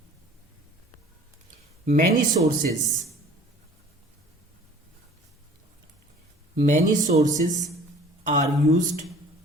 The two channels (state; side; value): normal; both; correlation 0.48